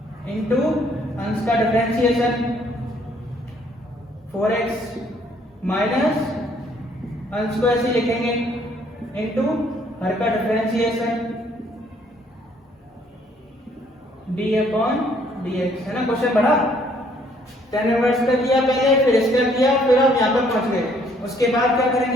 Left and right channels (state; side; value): normal; both; correlation 0.64